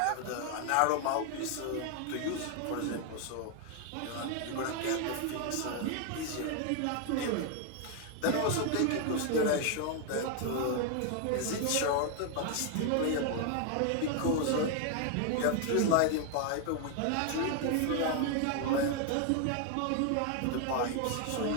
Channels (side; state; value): both; different; correlation 0.00